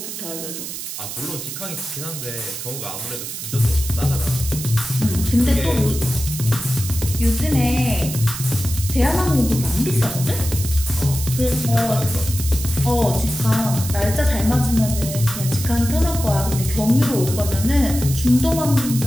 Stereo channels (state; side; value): noise; right; hiss, 8 dB below the sound